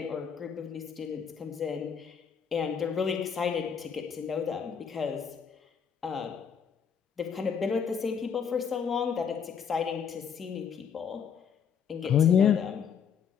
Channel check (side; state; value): right; quieter; 7.1 dB